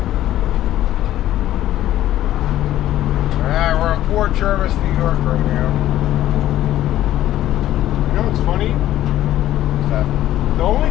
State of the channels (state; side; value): quieter; right; 13.3 dB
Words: Alright, we're in Port Jervis, New York right now. You know what's funny? What's that? The